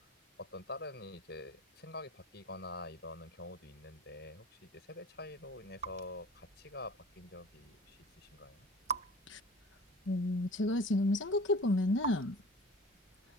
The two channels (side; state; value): both; normal; correlation 0.43